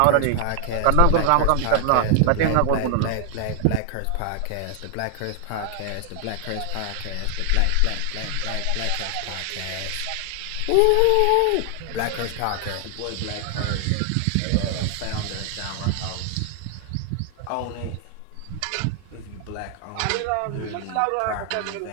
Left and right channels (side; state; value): both; different; correlation 0.00